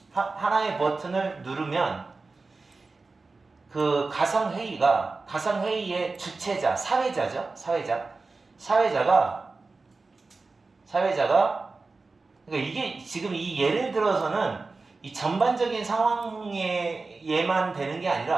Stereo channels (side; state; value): left; quieter; 3.8 dB